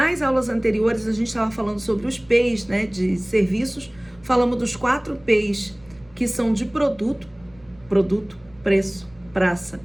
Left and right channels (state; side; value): noise; right; rumble, 28 dB below the sound